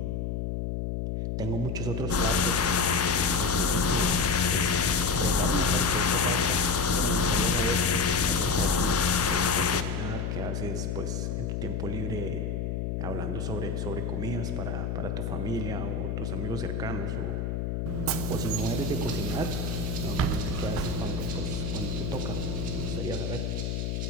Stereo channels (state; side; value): noise; left; hum, 2 dB below the sound